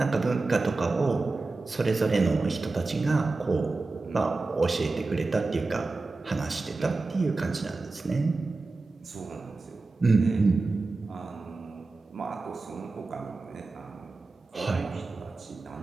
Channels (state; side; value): quieter; left; 3.6 dB